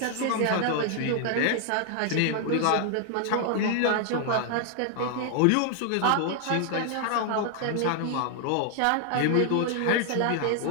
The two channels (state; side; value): different; both; correlation 0.00